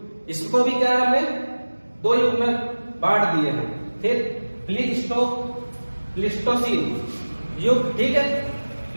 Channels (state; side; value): inverted; both; correlation -1.00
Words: इसको भी क्या है हमने 2 युग में बांट दिए हैं। फिर प्लीस्टोसीन, युग, ठीक है,